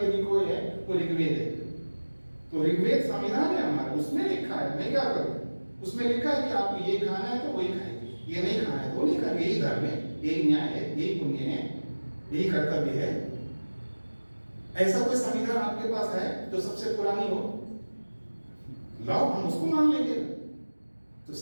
यदि कोई है वो ऋग्वेद है। तो ऋग्वेद संविधान है हमारा, उसमें लिखा है। मैं क्या करूं? उसमें लिखा है कि आपको ये खाना है तो वही खाएंगे, ये नहीं खाना है तो नहीं खाएंगे। यही धर्म है, यही न्याय है, यही पुण्य है, यही कर्तव्य है। ऐसा कोई संविधान आपके पास है जो सबसे पुरानी हो? लाओ, हम उसको मान लेंगे। तो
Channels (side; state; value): both; inverted; correlation -1.00